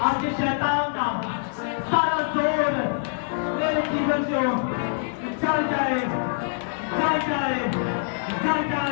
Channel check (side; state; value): right; silent; 62 dB below the other